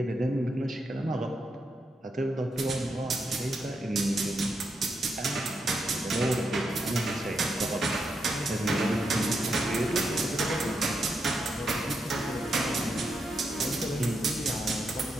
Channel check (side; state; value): both; normal; correlation 0.82